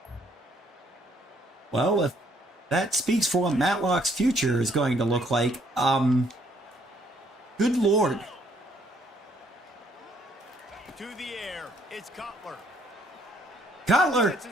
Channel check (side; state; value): both; normal; correlation 0.66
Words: Well, if that speaks for what Matlock's future is going to look like, good lord. To the air, it's Cutler. Cutler!